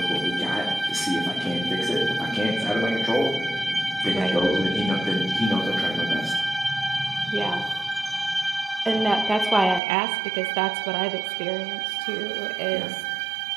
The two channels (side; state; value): left; drops out; at 9.8 s